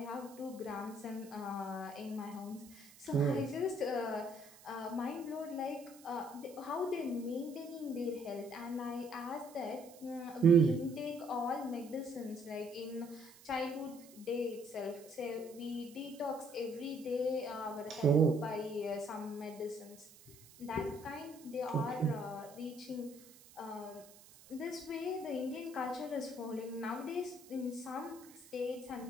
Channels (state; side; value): noise; right; hiss, 21 dB below the sound